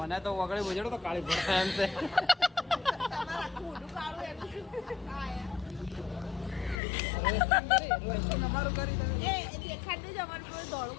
તો વગડે બજડો તો કાળી પડતા એમ છે અમારું કરી તમે એ દેખાડતું જ અમારું કોઈ દોડું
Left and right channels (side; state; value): right; drops out; at 6.8 s